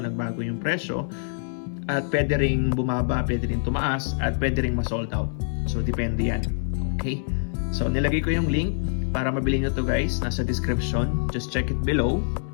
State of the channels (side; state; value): right; silent; digital silence